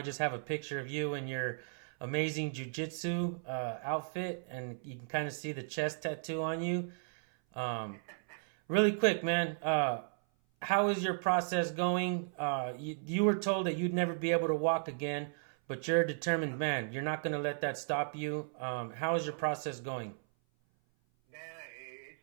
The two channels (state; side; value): silent; left; 54 dB below the other